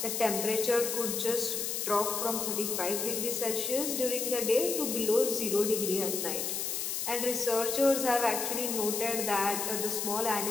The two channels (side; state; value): left; noise; hiss, 2 dB below the sound